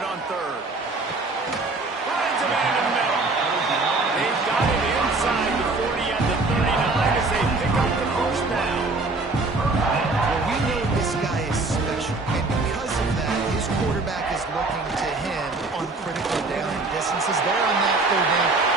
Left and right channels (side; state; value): left; quieter; 3.4 dB